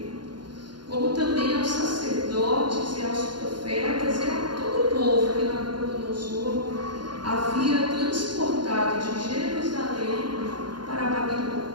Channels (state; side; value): late; left; 0.71 ms